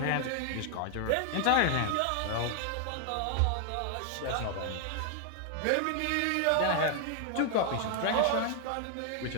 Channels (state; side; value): different; both; correlation 0.00